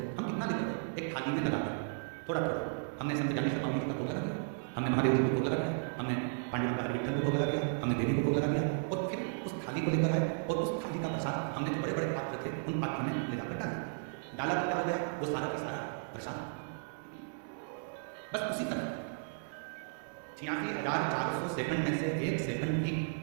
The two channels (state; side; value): silent; left; digital silence